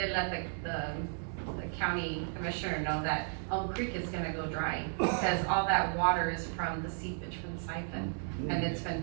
let the county commissioner know that Elm Creek is gonna go dry, because all that water is from the seepage from the siphon, and it's been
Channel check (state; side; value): silent; left; 55 dB below the other